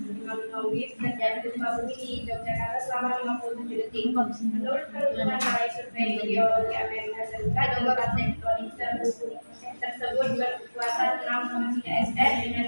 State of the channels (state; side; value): inverted; both; correlation -1.00